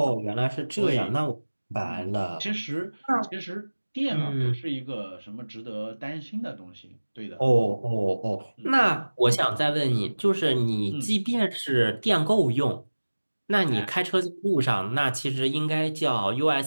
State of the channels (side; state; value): both; inverted; correlation -1.00